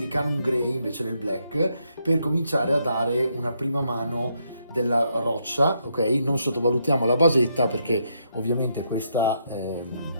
Grey invece del black per cominciare a dare una prima mano della roccia, ok? Non sottovalutiamo la basetta perché ovviamente questa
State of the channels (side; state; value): both; inverted; correlation -0.77